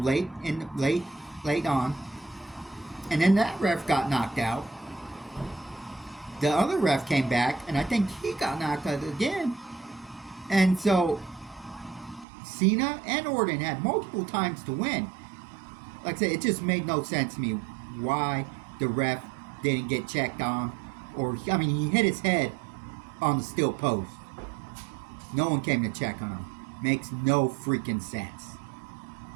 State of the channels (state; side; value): drops out; left; at 12.2 s